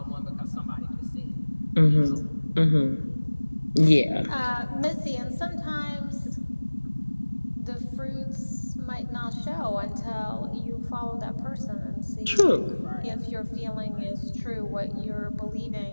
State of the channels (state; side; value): inverted; both; correlation -1.00